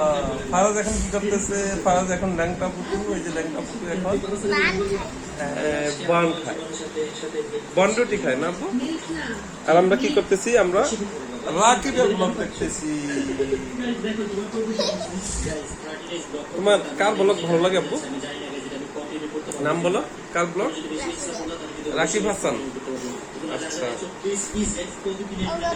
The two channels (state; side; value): identical; both; correlation 1.00